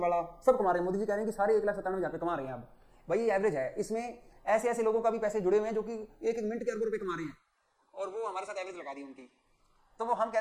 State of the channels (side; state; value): both; identical; correlation 1.00